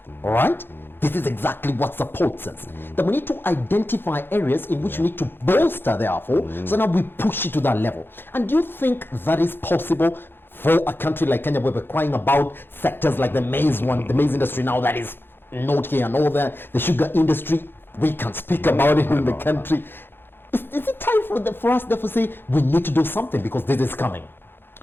all right, this is exactly what supports us, then we need to identify areas in which we need to bolster, therefore, so now we push it to that level. And do you think that is possible for a country like Kenya, where we're crying about sectors like the maize industry now that is not here, and all the sugar industry, we can speak about it in the country. Is it time for us therefore say we need to do something because this is coming?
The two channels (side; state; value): right; late; 0.10 ms